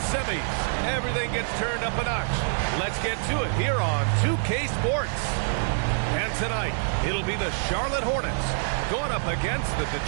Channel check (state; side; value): silent; left; digital silence